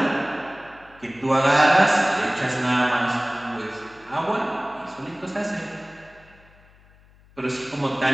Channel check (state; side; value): noise; left; hum, 28 dB below the sound